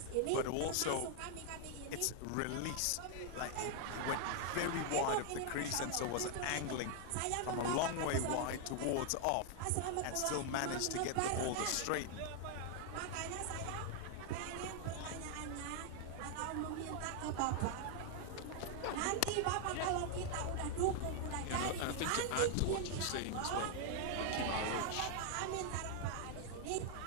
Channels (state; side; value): different; both; correlation 0.00